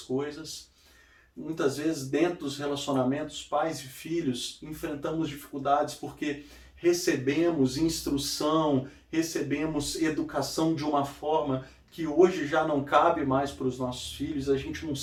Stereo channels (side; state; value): both; identical; correlation 1.00